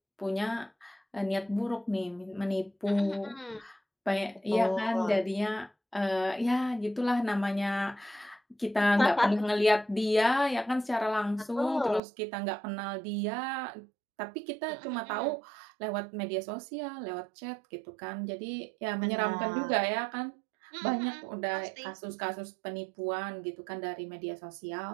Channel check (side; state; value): left; drops out; at 12.0 s